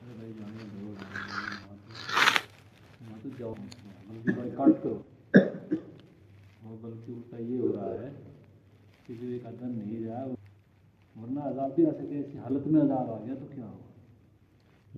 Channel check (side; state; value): both; identical; correlation 1.00